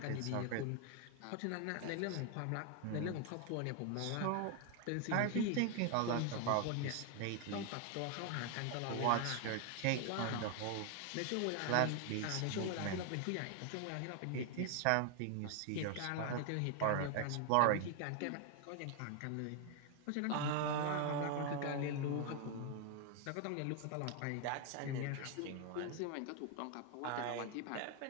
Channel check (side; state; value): both; different; correlation 0.01